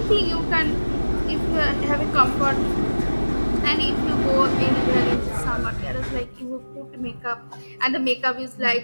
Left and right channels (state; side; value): inverted; both; correlation -1.00